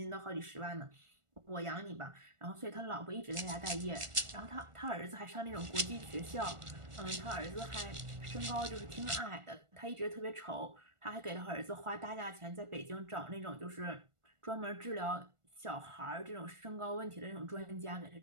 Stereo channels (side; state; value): left; late; 1.4 ms